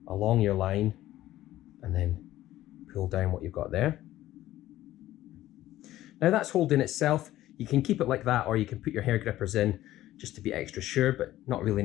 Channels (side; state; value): right; quieter; 14.6 dB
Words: along your line and then pull down what you've got there. Now that's holding itself. You can keep it like that, or you can put your hair grippers in just to be extra sure, but not really